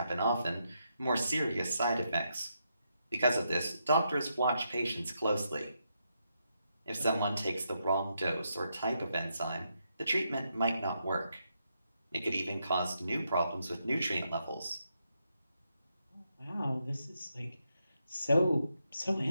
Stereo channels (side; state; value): both; inverted; correlation -0.81